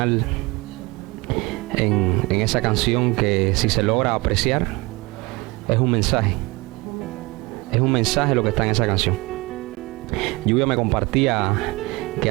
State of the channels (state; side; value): quieter; left; 23.5 dB